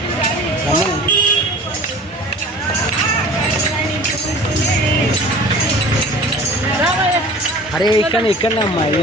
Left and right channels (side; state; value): both; normal; correlation 0.43